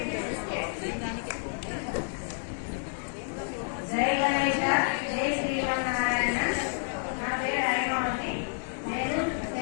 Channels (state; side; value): silent; right; 58 dB below the other